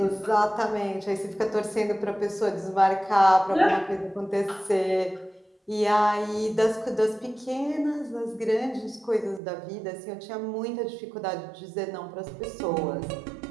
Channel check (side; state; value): left; drops out; at 9.4 s